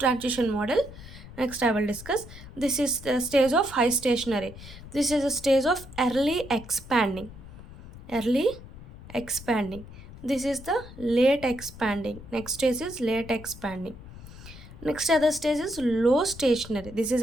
model. Next I will discuss. This is the stage of high stationary. This is a stage of early expanding. Early expanding. This is the late expanding. Next stage is late expanding. Next other stage is low stationary. This is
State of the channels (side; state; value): left; noise; rumble, 16 dB below the sound